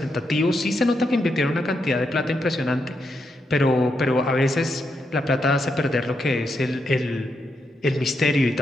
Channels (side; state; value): both; normal; correlation 0.82